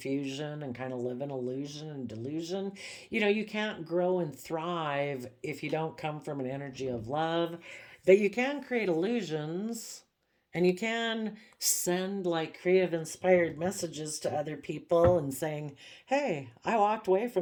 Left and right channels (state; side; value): identical; both; correlation 1.00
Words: and kind of live in illusion and delusion. You can't grow and thrive if you don't come from an energy of love. But you can create illusions, and you can send like creative inspired messages to other people and saying, hey, I walked away